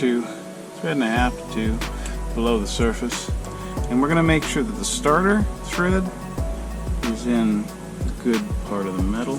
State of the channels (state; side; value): identical; both; correlation 1.00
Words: thread and a half to two below the surface. And we're going to make sure that the starter thread is in the good part of the